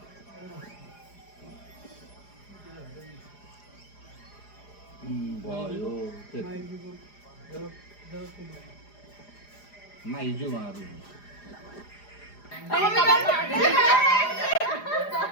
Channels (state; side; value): late; right; 4.9 ms